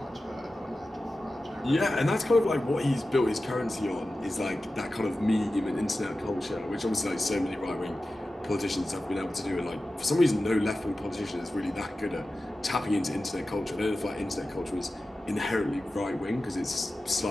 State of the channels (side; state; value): both; normal; correlation 0.94